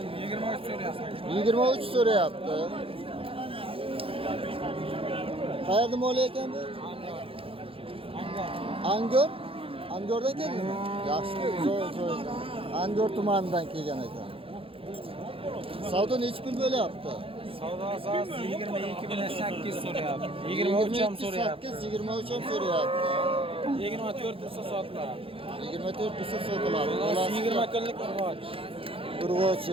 23 so'rayapti. Qayerda mol ekan bu? Angor? Angordan keldimi? Yaxshi, zo'r. Angor tumanidan kelgan ekan. Savdo necha pul bo'lyapti? Savdo asosida 22 bilan 8 so'rayapti. 23 ham so'rayapti. 23 ham so'rayapti. 24 bo'lsa sotiladi. 24 bo'lsa sotiladi. 20 kunlik urg'och.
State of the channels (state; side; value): late; left; 0.27 ms